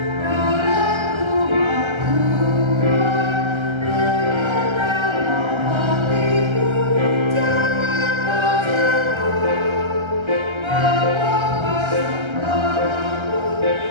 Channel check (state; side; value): late; left; 1.3 ms